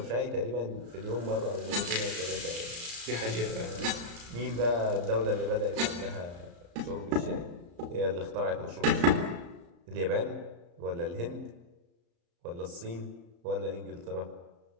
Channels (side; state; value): left; late; 34 ms